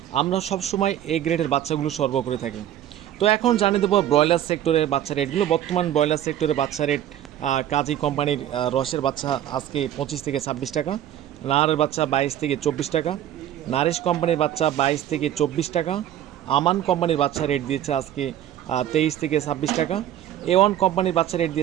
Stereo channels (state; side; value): quieter; left; 11.4 dB